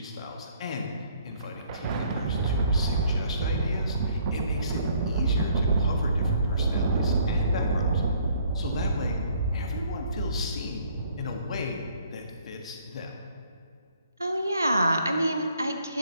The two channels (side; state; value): both; inverted; correlation -0.63